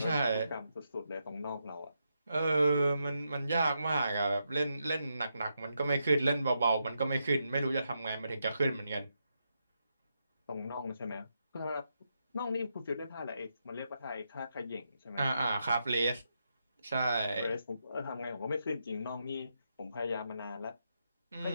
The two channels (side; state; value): both; inverted; correlation -0.83